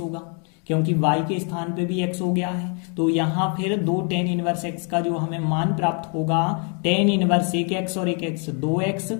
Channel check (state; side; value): quieter; right; 39.2 dB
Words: क्योंकि y के स्थान पे भी x हो गया है। तो यहाँ फिर 2 tan इनवर्स x का जो हमें मान प्राप्त होगा, tan इनवर्स 1x और 1x 2x